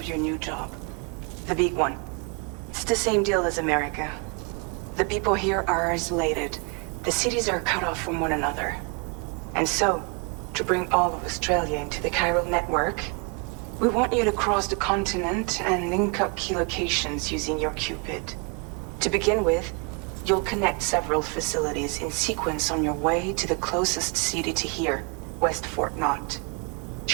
your new job. The big one. It's the same deal as America. The people here are isolated. The cities are cut off from one another. And so, to bring all of Australia into the chiral network, we want you to cross the continent and link up key locations using your Cupid. To begin with, you'll connect several facilities in sequence on your way to the closest city to here, West Fort Knott.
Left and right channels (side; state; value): left; quieter; 33.5 dB